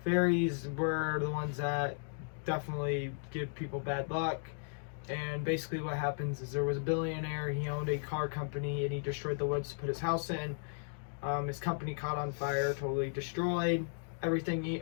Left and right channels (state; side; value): silent; right; digital silence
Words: Fairies were the ones that definitely give people bad luck. And basically what happens is there was a billionaire. He owned a car company and he destroyed the woods to put his house in. His company caught on fire, totally destroyed. Everything he